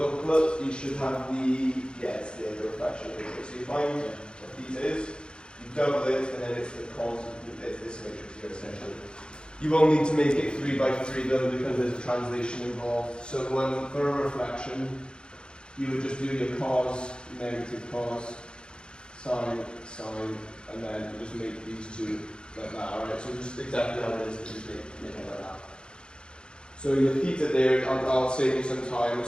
you should have the, it's the reflection matrix. So you find what theta is, you double it, and then it's the cos of this matrix here essentially. You won't need to make it 3 by 3 though, because there's a translation involved. So for a reflection, you would just do your cos, negative cos, sine, sine, and then you just make these two like that, alright? So just exactly how it is, just make it like that. So your theta there, I'll save you some time.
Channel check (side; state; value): right; late; 0.051 ms